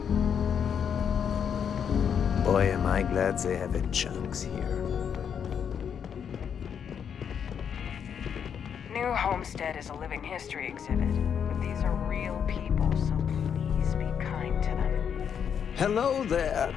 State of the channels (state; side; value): quieter; right; 7.8 dB